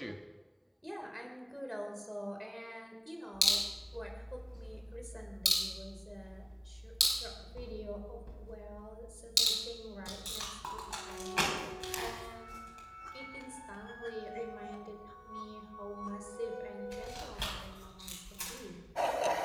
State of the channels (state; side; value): identical; both; correlation 1.00